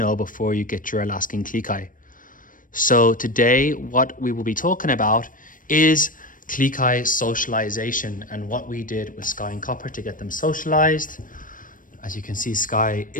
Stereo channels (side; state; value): right; late; 0.39 ms